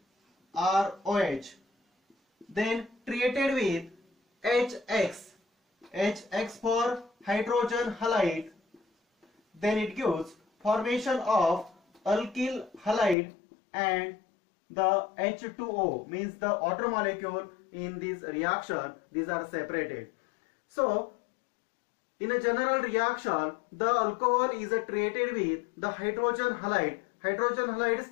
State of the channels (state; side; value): drops out; right; at 13.2 s